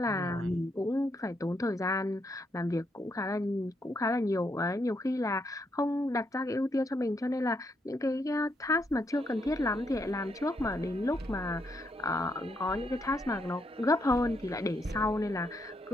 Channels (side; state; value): both; normal; correlation 0.77